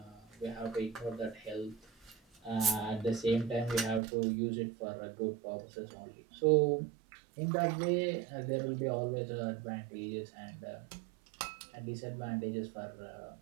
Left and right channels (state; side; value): drops out; left; at 4.0 s